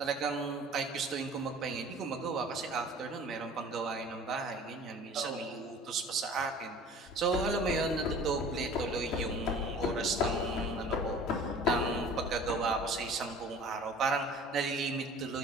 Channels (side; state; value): both; normal; correlation 0.45